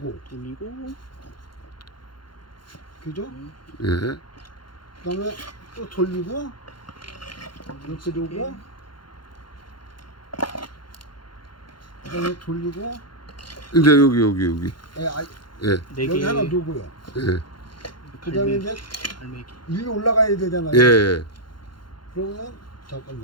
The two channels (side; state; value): right; late; 0.72 ms